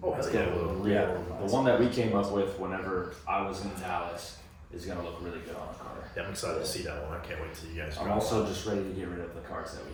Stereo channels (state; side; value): identical; both; correlation 1.00